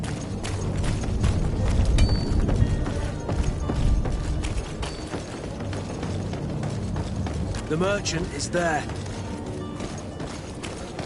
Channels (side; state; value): both; identical; correlation 1.00